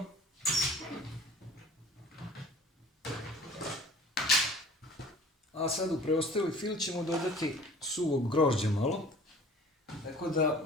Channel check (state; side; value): normal; both; correlation 0.47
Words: A sad u preostali fil ćemo dodati suvog grožđa malo. Tako da